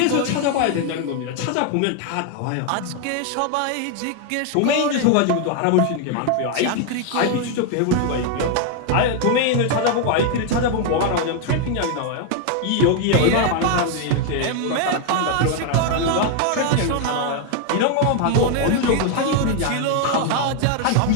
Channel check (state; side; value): different; both; correlation 0.00